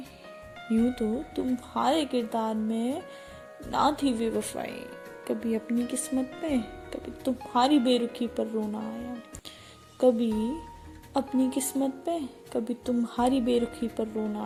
यूं तो तुम्हारे किरदार में ना थी बेवफाई। कभी अपनी किस्मत पे, कभी तुम्हारी बेरुखी पर रोना आया। कभी अपनी किस्मत पे, कभी तुम्हारी बेरुखी पर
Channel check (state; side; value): identical; both; correlation 1.00